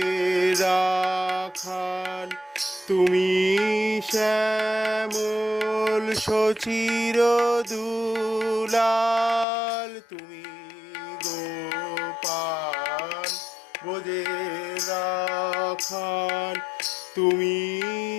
রাখাল, তুমি শ্যামল সচির দুলাল। তুমি গোপাল ব্রজের রাখাল, তুমি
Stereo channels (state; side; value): drops out; right; at 9.5 s